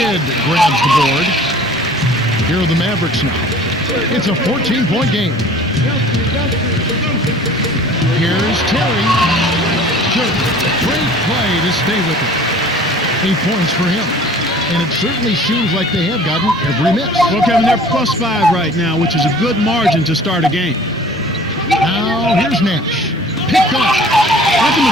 grabs the board. Here are the Mavericks now. It's a 14-point game. Here's Terry. Great play to stay with it. 8 points for him. And it certainly seems like they have gotten every miss. Well, Kevin, they're +5 right now, which is a good margin to start a game. Now, here's Nash. Picked off. That's a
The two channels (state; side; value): normal; both; correlation 0.48